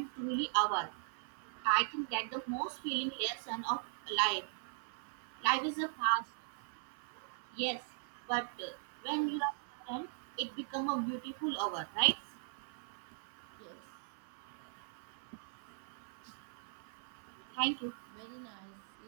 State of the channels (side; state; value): left; silent; 51 dB below the other